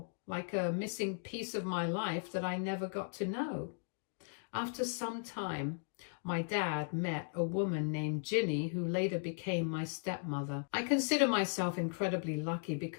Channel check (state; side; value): silent; right; digital silence